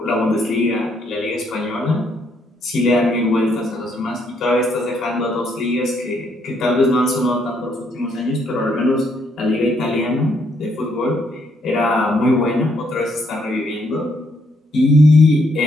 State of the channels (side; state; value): both; normal; correlation 0.72